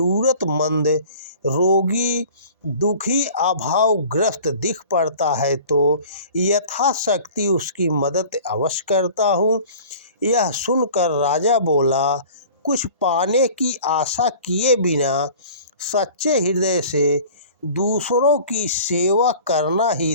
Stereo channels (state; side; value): inverted; both; correlation -0.45